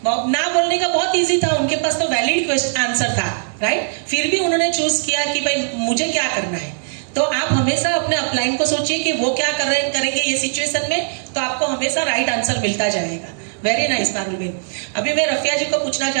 ना बोलने का बहुत इजी था, उनके पास तो वैलिड आंसर था। राइट। फिर भी उन्होंने चूज किया कि भाई मुझे क्या करना है। तो आप हमेशा अपने अपलाइन को सोचिए कि वो क्या करेंगे ये सिचुएशन में, तो आपको हमेशा राइट आंसर मिलता जाएगा। वेरी नाइस पारुल बहन। अभी मैं रफिया जी को पूछना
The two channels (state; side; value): silent; left; digital silence